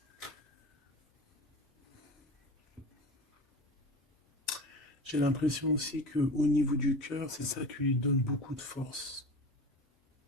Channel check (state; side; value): normal; both; correlation 0.32